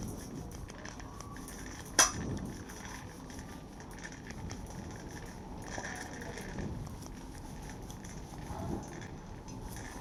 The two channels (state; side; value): identical; both; correlation 1.00